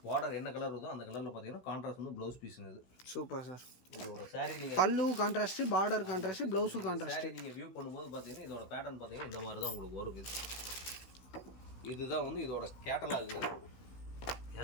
பார்டர் என்ன கலர் வருதோ அந்த கலரில் பார்த்தீங்கன்னா கான்ட்ராஸ்ட் வந்து ப்ளவுஸ் பீஸுங்க. இது சூப்பர் சார். இதோட சாரி நீங்கள் பல்லு contrast, border contrast, blouse contrast. நீங்கள் வியூ பண்ணும்போது பார்த்தீங்கன்னா இதோட பேட்டர்ன் பார்த்தீங்கன்னா இந்த மாதிரி தான் உங்களுக்கு வரும். இதுதான் வந்து இதோட கேட்டலாக்.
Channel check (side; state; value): right; late; 16 ms